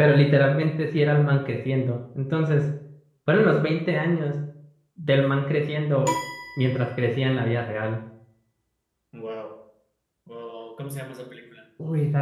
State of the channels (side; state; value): both; identical; correlation 1.00